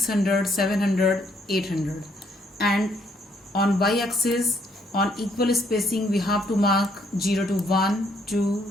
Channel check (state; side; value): normal; both; correlation 0.69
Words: 700, 800. And on y-axis on equal spacing we have to mark 0 to 1, 2,